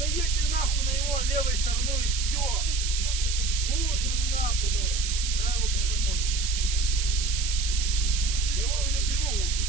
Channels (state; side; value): noise; right; hiss, 3 dB below the sound